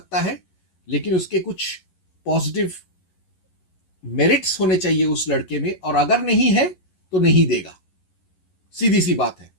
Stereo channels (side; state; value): right; late; 11 ms